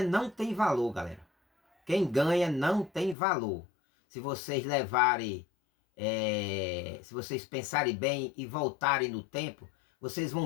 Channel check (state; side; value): drops out; right; at 3.2 s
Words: não tem valor, galera. Quem ganha não tem valor. Se vocês levarem, se vocês pensarem bem e voltarem no tempo, vocês